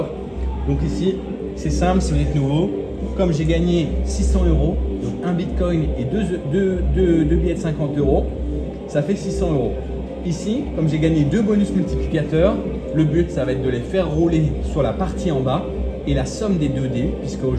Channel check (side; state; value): both; identical; correlation 1.00